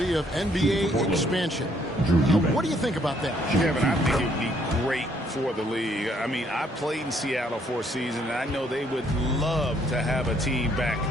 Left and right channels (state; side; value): normal; both; correlation 0.67